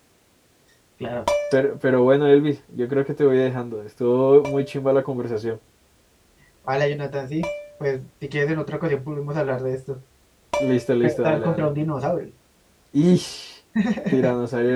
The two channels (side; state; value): both; identical; correlation 1.00